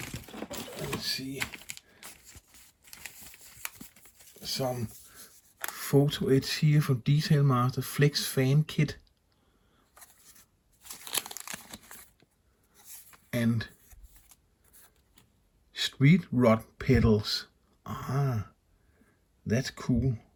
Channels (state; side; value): identical; both; correlation 1.00